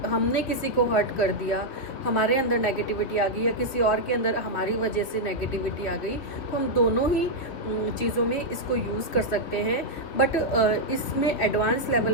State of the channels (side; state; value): right; late; 3.3 ms